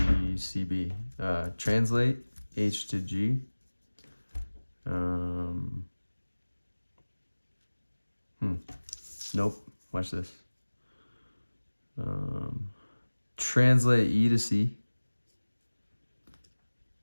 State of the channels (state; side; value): inverted; both; correlation -1.00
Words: Translate H to G. Nope. Watch this. Translate E to C.